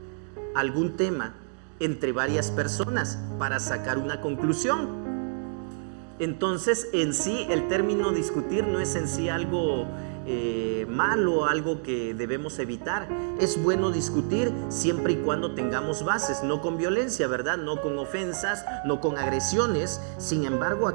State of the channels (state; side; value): silent; left; digital silence